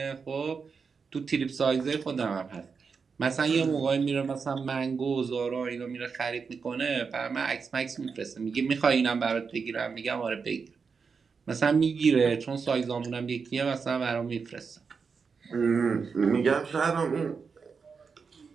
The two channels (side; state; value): left; quieter; 5.5 dB